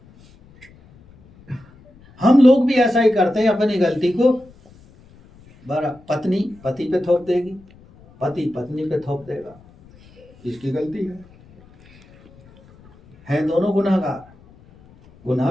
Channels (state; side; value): noise; left; rumble, 26 dB below the sound